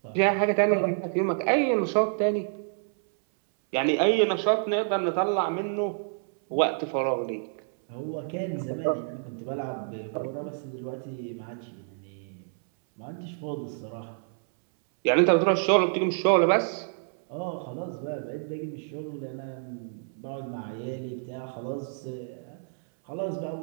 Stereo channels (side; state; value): left; silent; 59 dB below the other